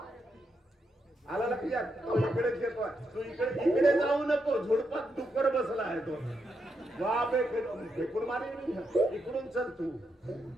आला लक्षात? तो इकडेच येतोय. तू इकडे जाऊ नको. झुडपात डुक्कर बसला आहे तो. बापे फेकून मारे. इकडून चल तू.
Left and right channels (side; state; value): both; normal; correlation 0.82